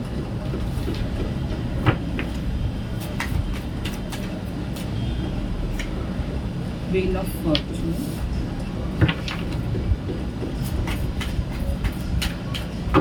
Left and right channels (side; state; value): both; identical; correlation 1.00